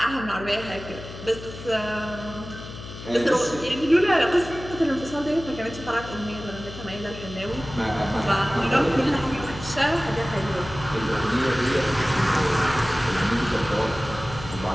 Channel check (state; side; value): noise; left; hum, 12 dB below the sound